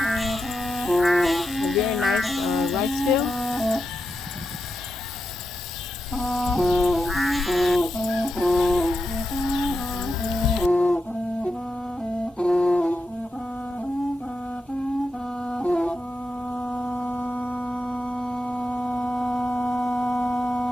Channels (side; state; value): both; normal; correlation 0.87